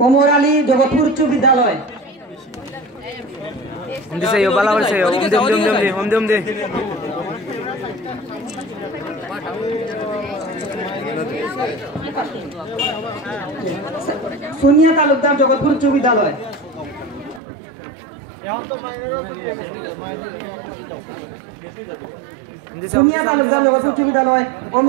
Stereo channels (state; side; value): drops out; left; at 17.4 s